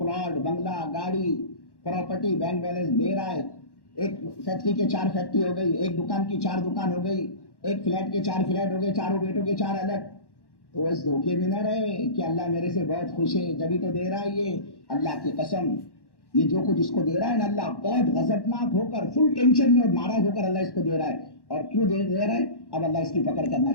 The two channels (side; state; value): right; late; 1.1 ms